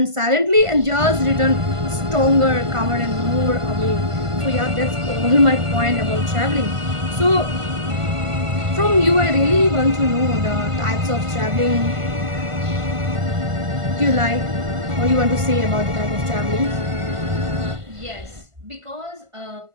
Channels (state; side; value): late; left; 1.5 ms